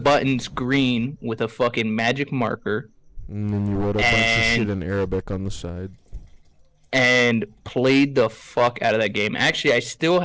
green with a fucking magic marker, And then you wrote a bunch of shit in Arabic on the side. and played the fuck out of that game. Actually, I still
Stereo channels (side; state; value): both; identical; correlation 1.00